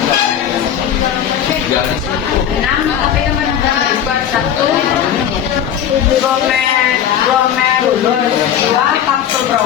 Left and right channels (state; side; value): quieter; right; 9.6 dB